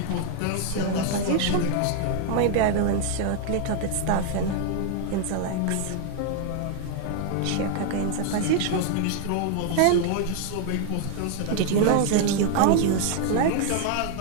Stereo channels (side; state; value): both; different; correlation 0.00